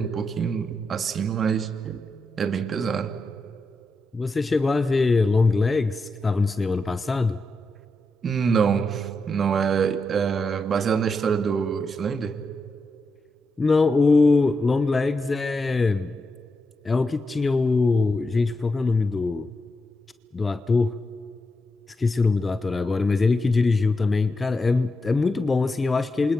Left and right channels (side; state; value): both; normal; correlation 0.86